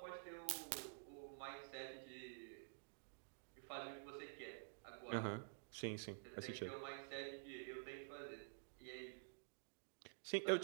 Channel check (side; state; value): left; silent; digital silence